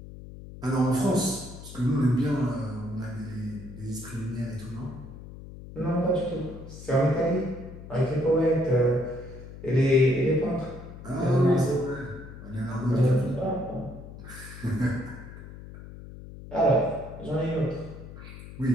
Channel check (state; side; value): noise; left; hum, 14 dB below the sound